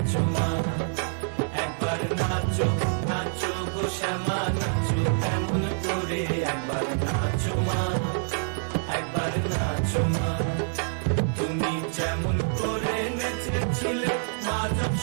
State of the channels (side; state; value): left; silent; 60 dB below the other